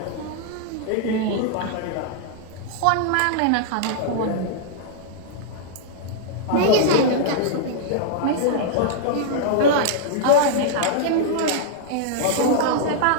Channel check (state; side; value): different; both; correlation -0.01